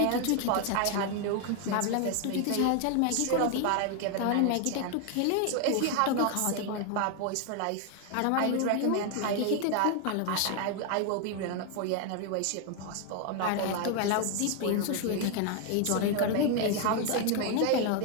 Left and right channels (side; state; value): both; different; correlation 0.01